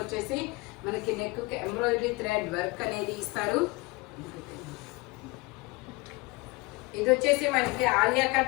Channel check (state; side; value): quieter; right; 24.5 dB